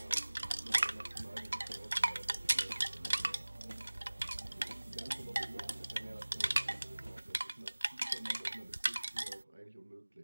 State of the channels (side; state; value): both; inverted; correlation -1.00